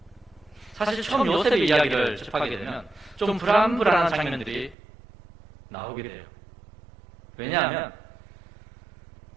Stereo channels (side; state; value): left; drops out; at 4.8 s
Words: 사실 처음 요셉의 이야기를 접하게 되면 좀 불안한 장면들이 나오게 돼요. 왜냐하면